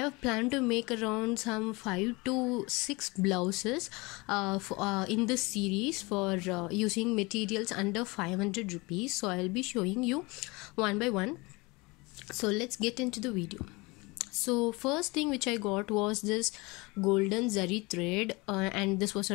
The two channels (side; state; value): right; quieter; 25.1 dB